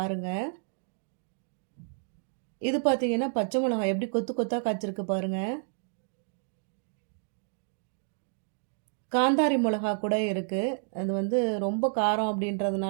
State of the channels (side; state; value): left; silent; digital silence